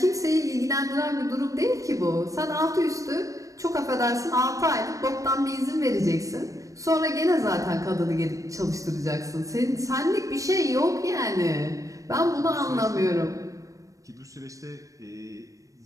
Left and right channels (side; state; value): left; late; 0.16 ms